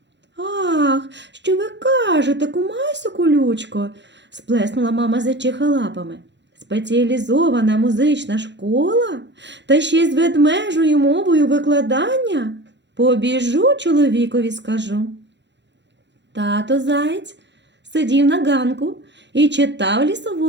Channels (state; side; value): late; left; 0.52 ms